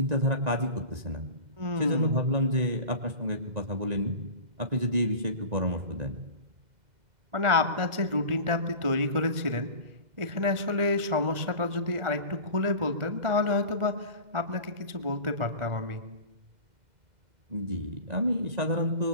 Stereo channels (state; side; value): late; left; 2.0 ms